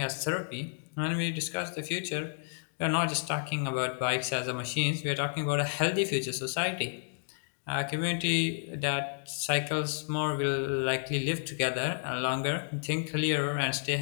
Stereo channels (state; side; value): silent; right; digital silence